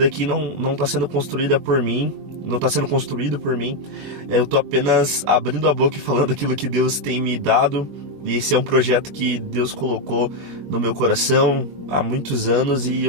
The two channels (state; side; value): late; left; 21 ms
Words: aqui não está sendo construído por mim. Não está sendo construído por mim. Eu estou apenas abrindo a boca e falando aquilo que Deus tem me dado. E esse é um projeto que Deus colocou no meu coração há muitos anos. E